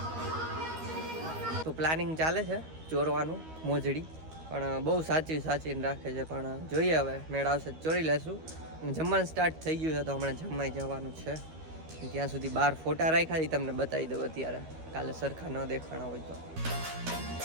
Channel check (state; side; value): late; left; 13 ms